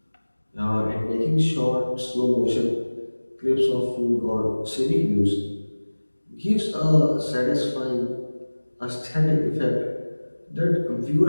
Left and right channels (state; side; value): inverted; both; correlation -1.00